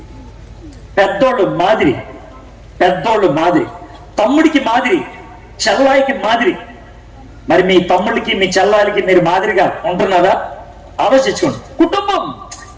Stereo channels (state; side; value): identical; both; correlation 1.00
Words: పెద్దోళ్ళు మాదిరి, తమ్ముడికి మాదిరి, చెల్లాయికి మాదిరి. మరి మీ తమ్ముడికి మీ చెల్లాయికి మీరు మాదిరిగా ఉంటున్నారా? ఆలోచించుకోండి. కుటుంబం,